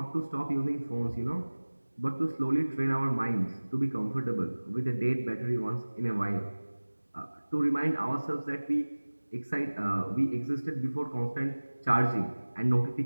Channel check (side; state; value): both; inverted; correlation -1.00